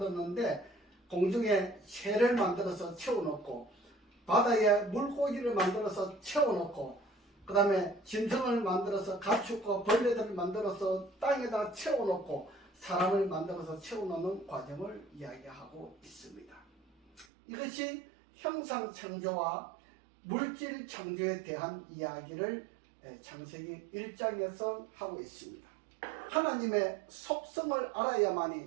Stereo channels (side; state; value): left; drops out; at 17.2 s